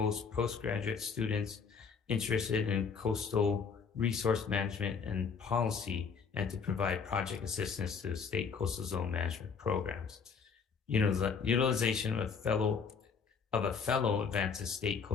postgraduate students interested in coastal resource management and policy, and to provide project assistance to state coastal zone management programs. utilization of a fellow advances state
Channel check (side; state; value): right; quieter; 5.8 dB